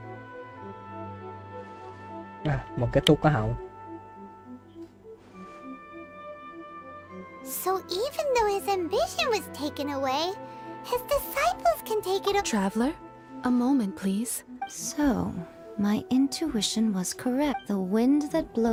Một cái tu có hậu. So even though his ambition was taken away, his disciples can take it... Traveler, a moment, please. So... My intuition was correct. The wind that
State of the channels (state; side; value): identical; both; correlation 1.00